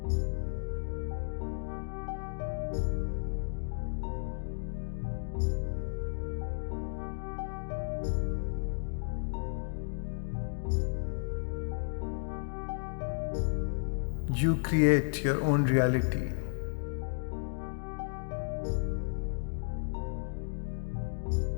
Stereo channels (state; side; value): silent; right; digital silence